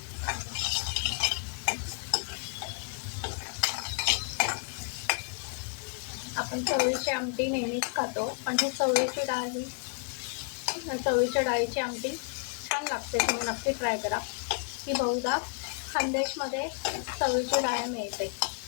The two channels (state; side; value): quieter; right; 38.5 dB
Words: आपण चवळीची आमटी नेहमीच खातो, पण ही चवळीची डाळ, चवळीच्या डाळीची आमटी छान लागते. तुम्ही नक्की ट्राय करा. ही बहुधा खानदेशमध्ये चवळीची डाळ मिळते